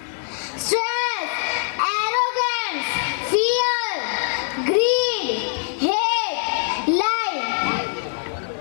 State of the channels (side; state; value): right; silent; digital silence